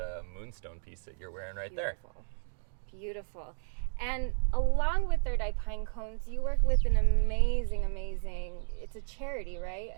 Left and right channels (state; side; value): silent; left; digital silence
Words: moonstone piece that you're wearing right there. Beautiful. And along with Third Eye Pinecones, you work with an amazing, it's a charity, right?